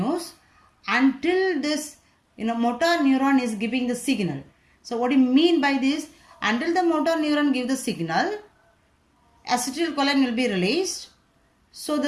until this motor neuron is giving the signal. So what do you mean by this? Until the motor neuron give the signal, acetylcholine will be released. So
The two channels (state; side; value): identical; both; correlation 1.00